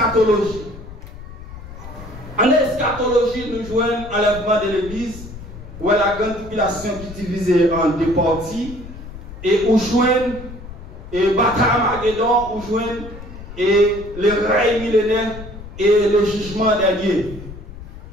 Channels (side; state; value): left; noise; rumble, 14 dB below the sound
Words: En eschatologie, nous jouons l'enlèvement de l'Église, où la grande tribulation qui est divisée en deux parties, et où jouons et bataille Armageddon, où jouons et le règne millénaire et le jugement dernier.